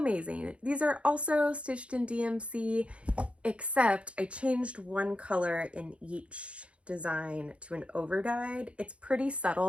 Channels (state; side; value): late; left; 0.060 ms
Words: These are also stitched in DMC, except I changed one color in each design to an overdyed. It's pretty